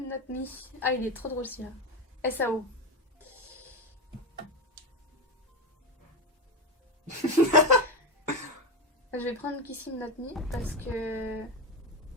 Not Me. Ah, il est trop drôle celui-là. SAO. Je vais prendre Kiss Him Not Me parce que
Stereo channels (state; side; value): normal; both; correlation 0.14